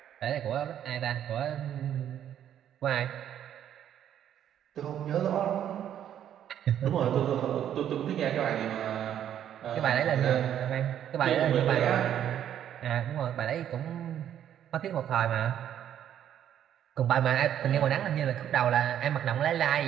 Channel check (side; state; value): left; quieter; 10.2 dB